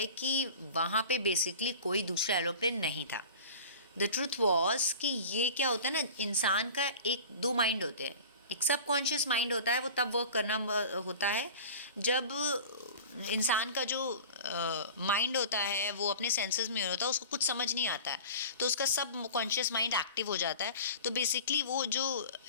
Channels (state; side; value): inverted; both; correlation -0.39